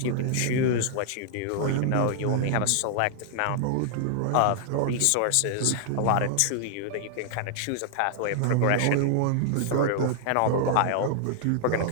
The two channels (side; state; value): both; different; correlation -0.01